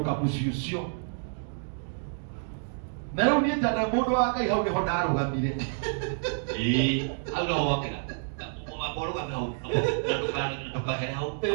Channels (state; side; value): silent; left; digital silence